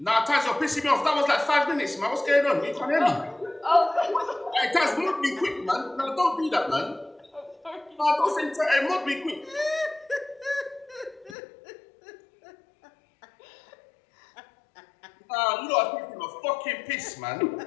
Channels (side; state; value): right; drops out; at 11.4 s